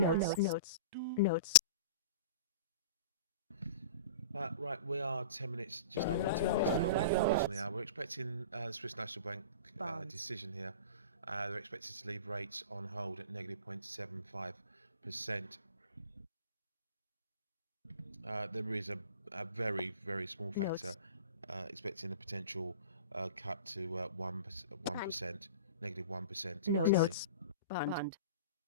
notes, notes, Right, we are 10 minutes, just under 10 minutes now away from the bottom of the hour. We're expecting the Swiss National Bank Bonds. decision here. They're expected to leave rates on hold at negative 0.75%. There is a very, very small factor expecting a potential cut to 1%, negative 1%. notes, today. notes, Bund. Bund.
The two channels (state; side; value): inverted; both; correlation -0.37